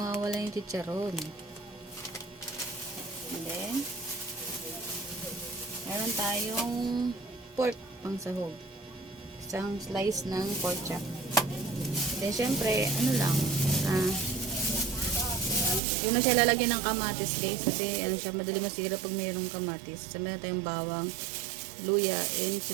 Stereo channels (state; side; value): drops out; left; at 15.8 s